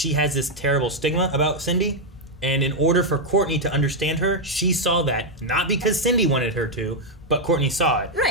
has this terrible stigma about Cindy. And in order for Courtney to understand her, she saw that. Not because Cindy wanted her to, but Courtney saw it.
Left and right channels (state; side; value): normal; both; correlation 0.00